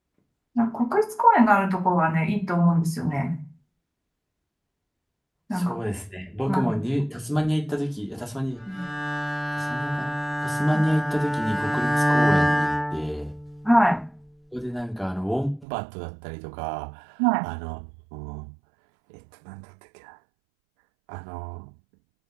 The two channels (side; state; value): left; drops out; at 15.7 s